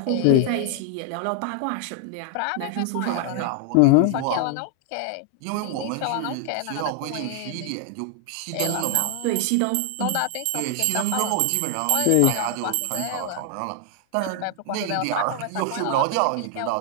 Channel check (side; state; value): both; different; correlation 0.00